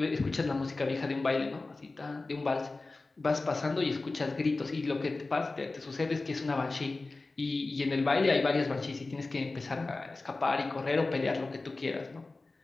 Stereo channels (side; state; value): right; quieter; 3.4 dB